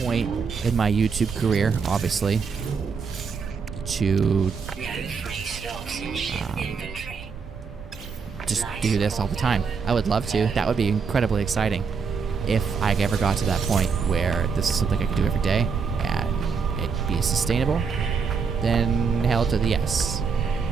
point in my YouTube career, obviously, to just do this all the time. I would love to. That would be incredibly exciting. If I ever got to that point where this is something I could do every day and it'd be sustainable, then hell to the yes.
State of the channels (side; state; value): left; quieter; 5.6 dB